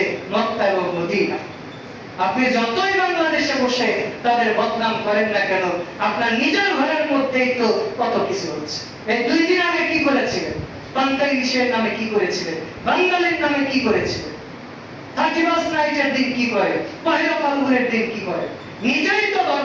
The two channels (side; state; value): both; identical; correlation 1.00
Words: মক্কা এবং মদিনা। আপনি যতই বাংলাদেশে বসে তাদের বদনাম করেন না কেন, আপনার নিজের ঘরের মধ্যেই তো কত কিছু হচ্ছে। এই 2 দিন আগে কি করেছিলেন? পান্তাইশের নামে কি করেছিলেন? বাঙালির নামে কি করেছিলেন? 31 নাইটের দিন কি করে? পহেলা ফাল্গুনের দিন কি করে? নিজেই তো